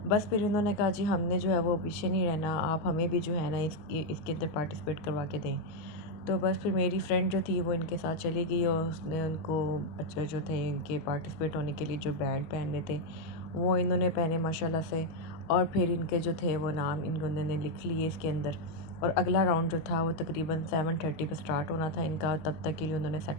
बस फिर इन्होंने कहा जी हमने जो है वो पीछे नहीं रहना, आप हमें भी जो है ना इसके अंदर पार्टिसिपेट करवा के दें। तो बस फिर मेरी फ्रेंड जो थी वो इनके साथ चली गई और उसने उनको अच्छा जो थे इनके पार्टिसिपेट होने के लिए जो बैंड पहनने थे वो इन्होंने पहने माशाल्लाह से। और फिर इनके जो थे वो नाम इन्होंने लिख लिए इसके अंदर। और अगला राउंड जो था वो तकरीबन 7:30 पे स्टार्ट होना था इनका, तब तक के लिए उन्होंने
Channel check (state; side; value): late; right; 19 ms